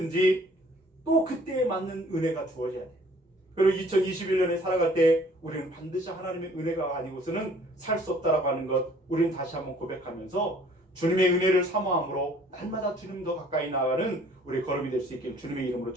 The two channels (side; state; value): both; normal; correlation 0.56